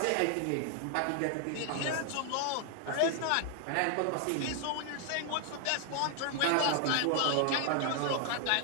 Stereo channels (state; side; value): different; both; correlation 0.00